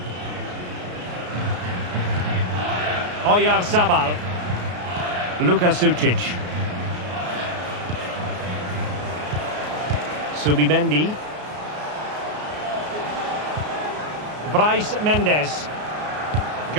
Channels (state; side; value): late; left; 33 ms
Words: Oyarzabal. Luka Sucic. Subimendi. Bryce Mendes.